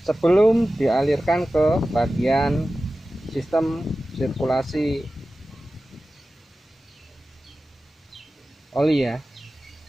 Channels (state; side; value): normal; both; correlation 0.95